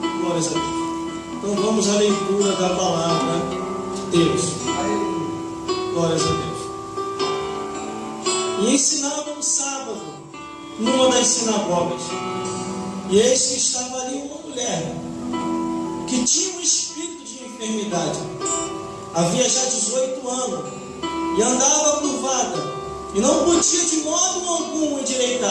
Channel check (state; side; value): identical; both; correlation 1.00